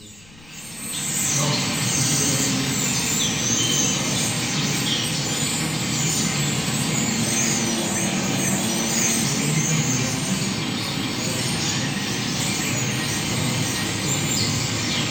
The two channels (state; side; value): noise; left; rumble, 23 dB below the sound